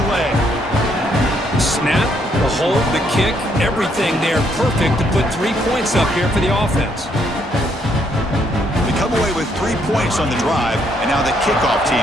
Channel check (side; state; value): both; normal; correlation 0.72